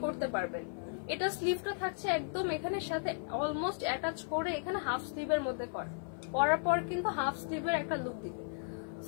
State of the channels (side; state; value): right; silent; 54 dB below the other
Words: করতে পারবেন। এটা স্লিভটা থাকছে একদম এখানে সাথে অলমোস্ট অ্যাটাচ করে, এখানে হাফ স্লিভের মধ্যে পরার পর কিন্তু হাফ স্লিভের একটা লুক দিবে।